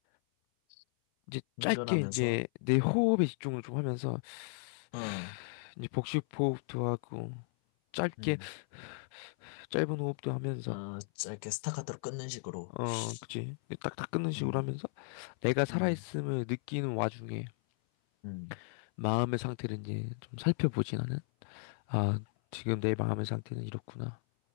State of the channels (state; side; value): silent; right; 54 dB below the other